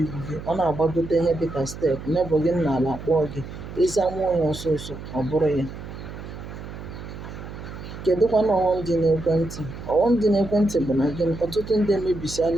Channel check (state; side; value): noise; right; hum, 11 dB below the sound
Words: gị, ọ na-agbagote ihe dịka steepụ, nebọ gị n'ala kpọọ gị, ịza nwa onye ọsọsọ, ọ bụrụ ya. Kedụkwanụ ọghọm dị n'ekwentị? Ọghọm dị n'ekwentị bụ na gịnị? Ọtụtụ ndị